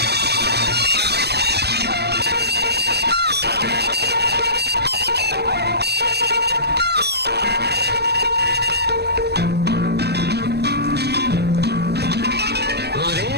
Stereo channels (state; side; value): late; left; 0.48 ms